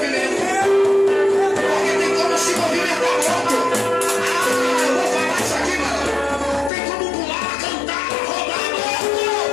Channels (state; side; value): drops out; right; at 6.7 s